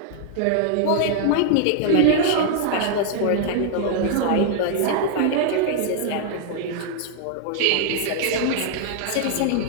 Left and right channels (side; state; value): both; different; correlation -0.01